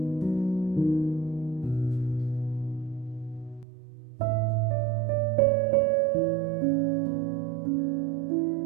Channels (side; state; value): left; drops out; at 3.7 s